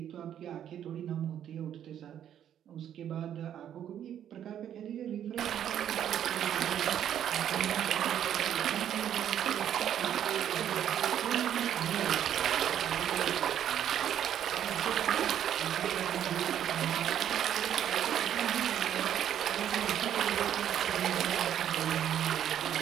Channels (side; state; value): left; quieter; 10.1 dB